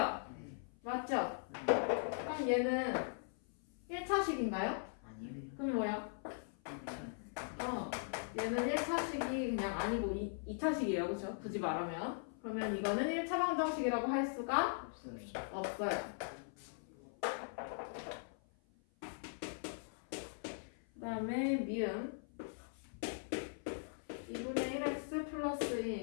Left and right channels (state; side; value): silent; right; 51 dB below the other